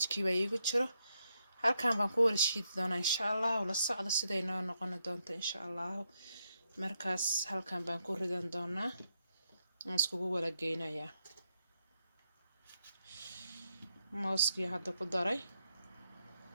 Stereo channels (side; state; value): both; inverted; correlation -0.80